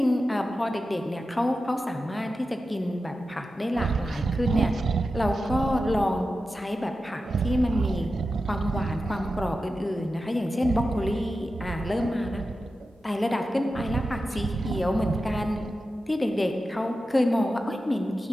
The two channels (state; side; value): normal; both; correlation 0.92